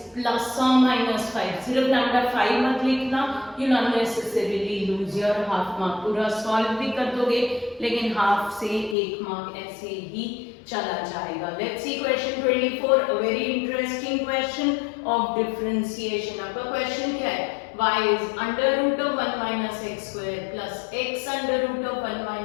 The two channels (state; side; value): drops out; right; at 9.0 s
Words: प्लस और माइनस 5। सिर्फ लैम्डा 5 मत लिखना, you unnecessarily lose your half mark. पूरा सॉल्व भी कर दोगे लेकिन हाफ से 1 मार्क ऐसे ही चला जाएगा। Let's see question 24, a very interesting question of differentiation. आपका क्वेश्चन क्या है? y is under root of 1 minus x square plus x under root of 1